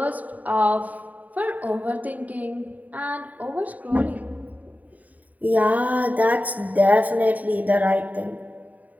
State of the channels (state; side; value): late; left; 0.075 ms